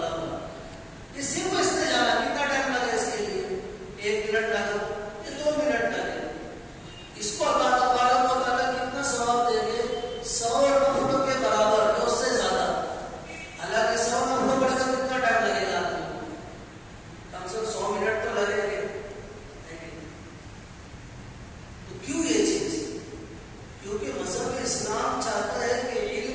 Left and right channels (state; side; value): identical; both; correlation 1.00